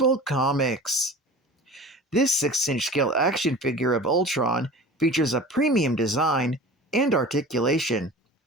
Comics. This 6-inch scale action figure of Ultron features a premium design and articulation.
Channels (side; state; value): both; normal; correlation 0.38